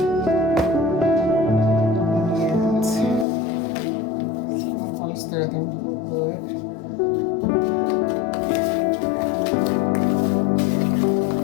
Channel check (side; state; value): right; drops out; at 3.2 s